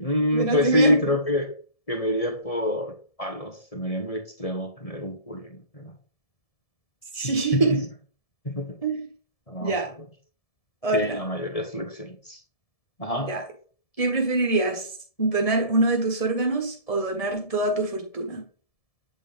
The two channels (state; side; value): late; right; 1.7 ms